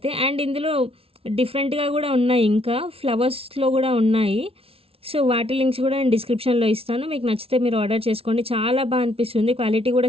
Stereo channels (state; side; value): late; left; 0.27 ms